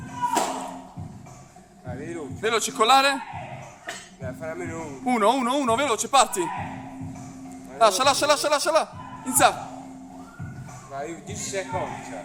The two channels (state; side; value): identical; both; correlation 1.00